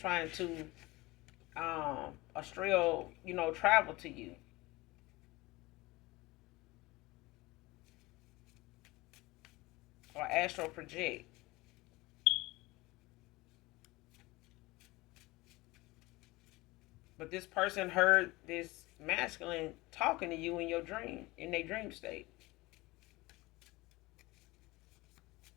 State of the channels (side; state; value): right; quieter; 21.4 dB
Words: to astral, travel to you. Or astral project. But this person heard this masculine talking to you in your dream, in their dream state.